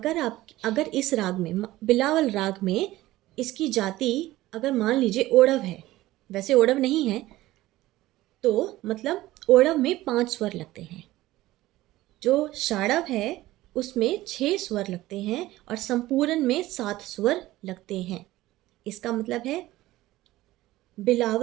इस राग में, बिलावल राग में, इसकी जाति अगर मान लीजिए ओढ़व है, वैसे ओढ़व नहीं है, तो मतलब ओढ़व में 5 स्वर लगते हैं। जो शाड़व है उसमें 6 स्वर लगते हैं और संपूरन में 7 स्वर लगते हैं। इसका मतलब है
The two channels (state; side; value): quieter; left; 16.8 dB